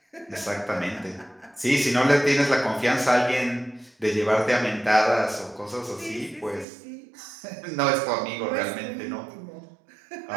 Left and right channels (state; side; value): drops out; left; at 6.7 s